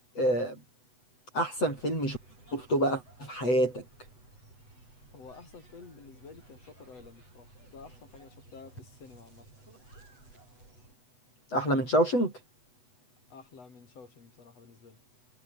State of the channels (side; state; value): right; late; 8.0 ms